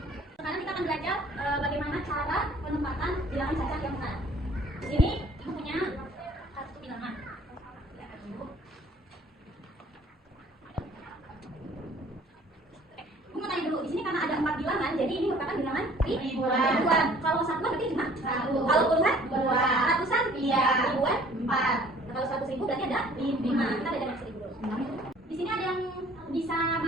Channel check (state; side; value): normal; both; correlation 0.54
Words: Sekarang kita akan belajar bagaimana cara penempatan bilangan cacat yang benar. Di sini ibu punya satu bilangan. Ibu mau tanya dulu, di sini karena ada 4 bilangan, jadi ini merupakan bilangan ribuan. Kalau satuan berarti cuma 1. Kalau puluhan 2. Ratusan 3. Ribuan 4. Kalau 100.000 berarti ada 5. Kita belajar yang 1000 dulu. Di sini ada yang bisa